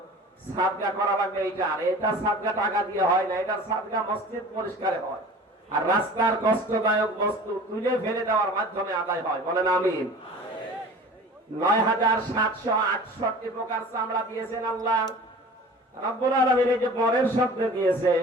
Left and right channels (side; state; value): both; normal; correlation 0.42